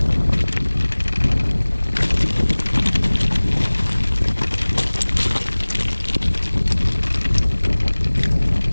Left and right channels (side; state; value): both; inverted; correlation -1.00